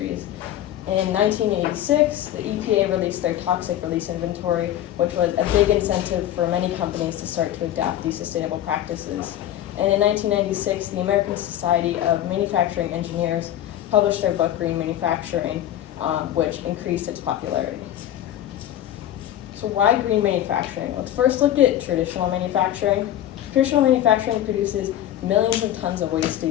In 1986, the EPA released their toxic release inventory, which was a big incentive for many companies to start to adopt these sustainable practices. And in 1996, the American Society of Manufacturing Engineers published their book, Green Manufacturing, which increased its popularity. So why green manufacturing? Let's first look at traditional manufacturing. Traditional manufacturing produces millions of tons of waste a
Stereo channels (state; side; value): quieter; right; 12.1 dB